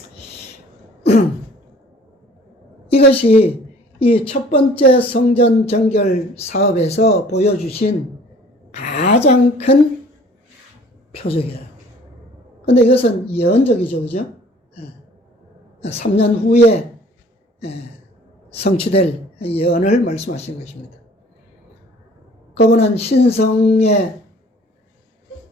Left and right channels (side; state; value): both; normal; correlation 0.52